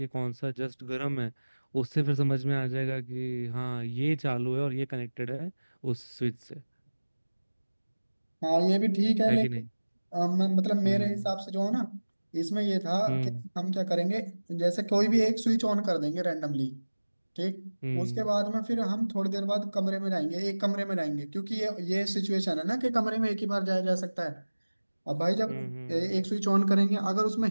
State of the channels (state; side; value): inverted; both; correlation -1.00